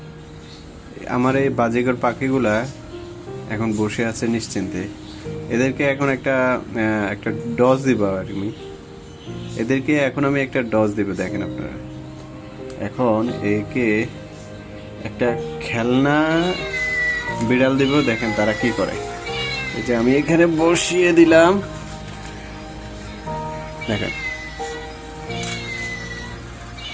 আমার এই বাজিগর পাখিগুলা এখন বসে আছে নিশ্চিন্তে। এদেরকে এখন একটা ডজ দিব আমি। এদেরকে এখন আমি একটা ডজ দিব। দেখেন আপনারা, এখন একে একটা খেলনা বিড়াল দিব। দেখেন তারা কি করে। এই যে আমি এখানে বসিয়ে দিলাম, দেখেন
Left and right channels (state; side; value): identical; both; correlation 1.00